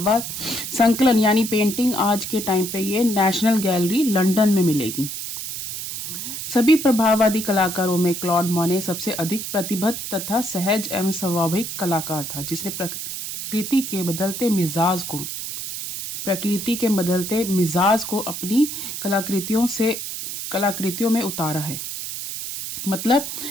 संकलन यानी पेंटिंग आज के टाइम पे ये नेशनल गैलरी लंदन में मिलेगी। सभी प्रभाववादी कलाकारों में क्लॉड मोने सबसे अधिक प्रतिबद्ध तथा सहज एवं स्वाभाविक कलाकार था, जिसने प्रकृति के बदलते मिजाज को अपनी कलाकृतियों में उतारा है। मतलब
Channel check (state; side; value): noise; right; hiss, 6 dB below the sound